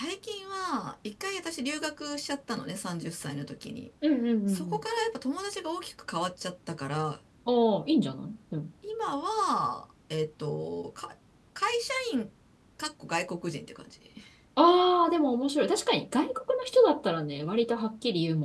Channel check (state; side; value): identical; both; correlation 1.00